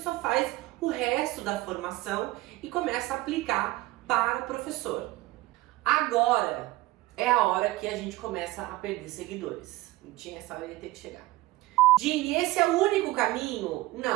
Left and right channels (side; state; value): left; quieter; 18.5 dB